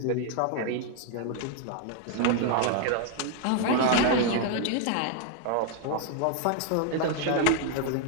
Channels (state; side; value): different; both; correlation 0.00